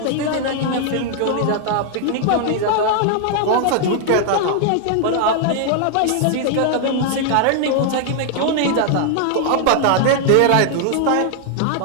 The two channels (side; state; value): both; different; correlation 0.00